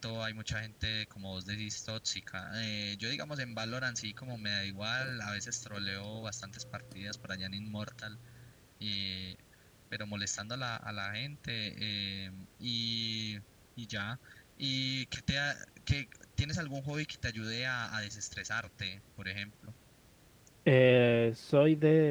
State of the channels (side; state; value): both; identical; correlation 1.00